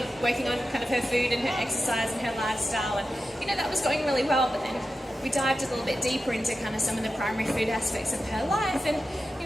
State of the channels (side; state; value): both; normal; correlation 0.92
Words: on kind of her food and her exercise and her lifestyle, and that was going really well. But then we dived a little bit deeper into kind of some of the primary food aspects of her life, and